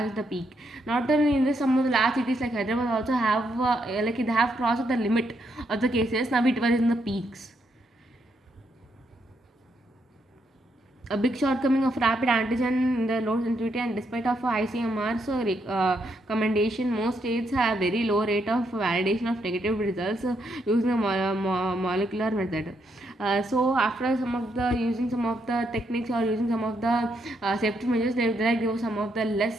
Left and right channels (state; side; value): normal; both; correlation 0.77